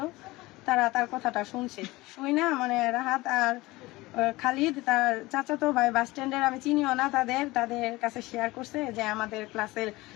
তারা তার কথাটা শুনছে, শুই না মানে রাহাত আর খালিদ তার চাচাতো ভাই বাস স্ট্যান্ডের, আমি চিনিও না তাদের কাছে শেয়ার করছে যে আমাদের ক্লাসের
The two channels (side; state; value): right; quieter; 20.3 dB